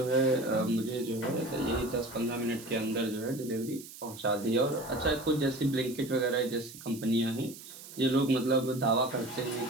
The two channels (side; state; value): right; noise; hiss, 16 dB below the sound